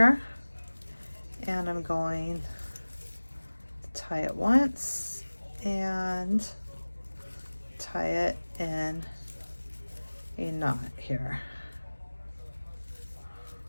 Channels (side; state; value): both; inverted; correlation -1.00